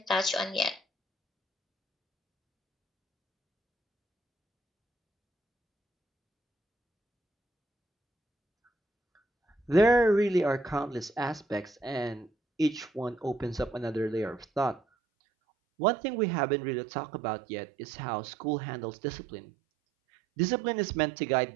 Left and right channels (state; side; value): drops out; left; at 14.8 s